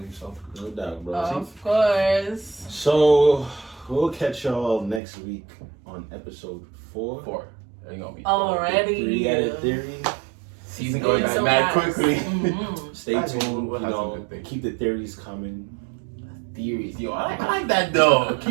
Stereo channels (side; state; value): left; drops out; at 5.0 s